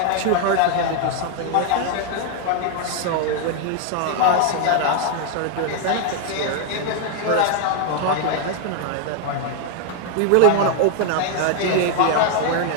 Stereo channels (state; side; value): different; both; correlation 0.00